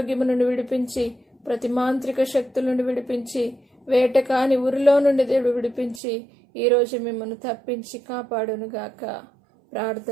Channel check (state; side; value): drops out; left; at 6.0 s